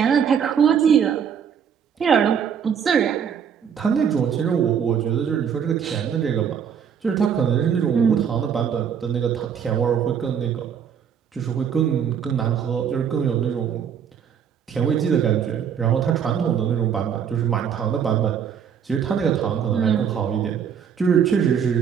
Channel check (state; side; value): quieter; left; 7.7 dB